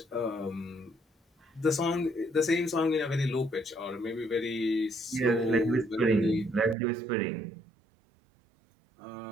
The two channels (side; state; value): left; drops out; at 6.8 s